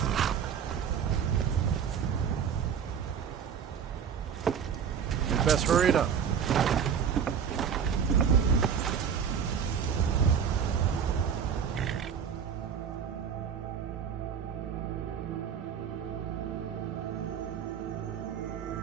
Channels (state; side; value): quieter; left; 7.5 dB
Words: You'd best hurry it up.